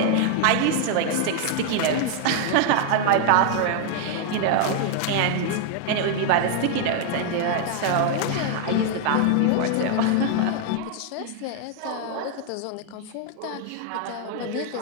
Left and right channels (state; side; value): different; both; correlation 0.00